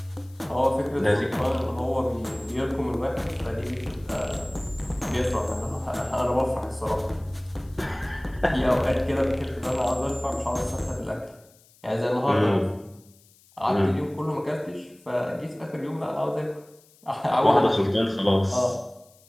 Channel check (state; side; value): noise; left; hiss, 29 dB below the sound